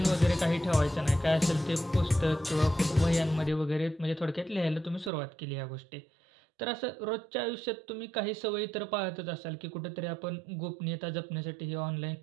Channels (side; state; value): left; drops out; at 5.1 s